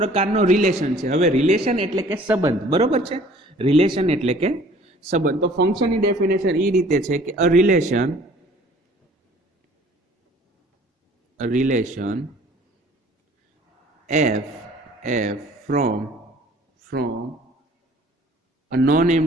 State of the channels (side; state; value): both; normal; correlation 0.53